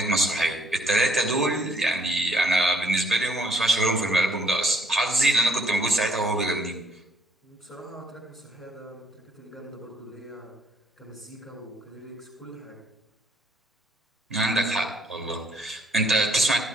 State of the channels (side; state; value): both; normal; correlation 0.66